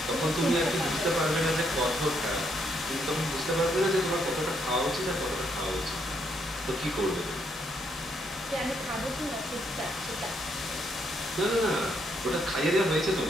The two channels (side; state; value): both; normal; correlation 0.74